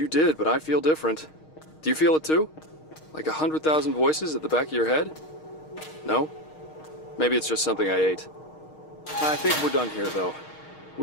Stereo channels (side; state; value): right; late; 6.4 ms